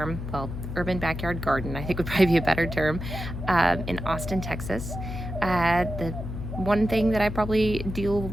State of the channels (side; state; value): left; noise; hum, 7 dB below the sound